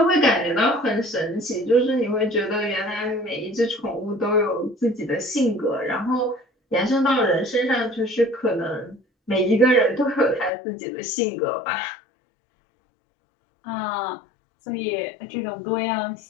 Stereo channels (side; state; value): right; drops out; at 10.5 s